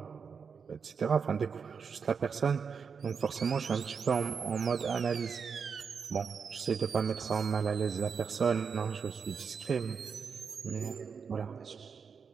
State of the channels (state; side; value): quieter; left; 6.0 dB